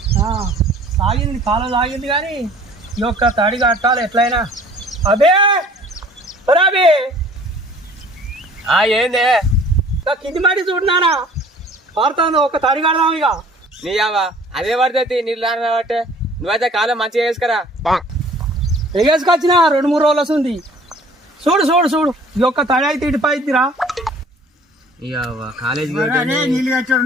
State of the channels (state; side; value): normal; both; correlation 0.52